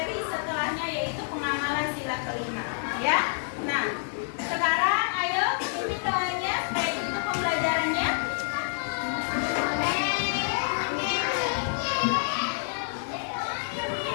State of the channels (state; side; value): silent; right; digital silence